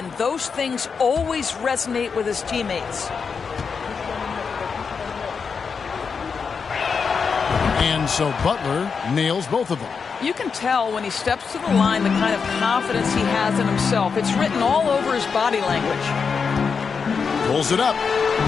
Those things always resonate with his teammates. And so Butler nails both of them. You can tell when he steps to the line the kind of confidence he has in himself. It's written all over his body language. Pulls it up.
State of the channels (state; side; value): quieter; right; 5.7 dB